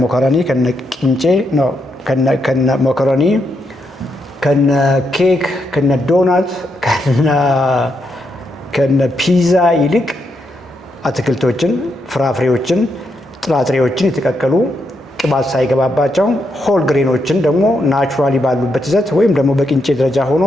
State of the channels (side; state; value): both; normal; correlation 0.80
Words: ሞኮሮኒ፣ ከነ ቂንጬ ነው፣ ከነ ሞኮሮኒ፣ ከነ ኬክ፣ ከነ ዶናት፣ ከነ ፒዛ ይልቅ አትክልቶችን፣ ፍራፍሬዎችን፣ ጥራጥሬዎችን የተቀቀሉ ቅባት ሳይገባባቸው ሆል ግሬኖችን ደግሞ ናቹራሊ ባሉበት ይዘት ወይም ደግሞ በቂንጬ ደረጃ ሆኖ